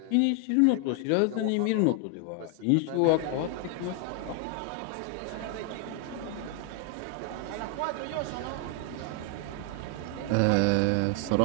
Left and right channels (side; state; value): both; different; correlation 0.00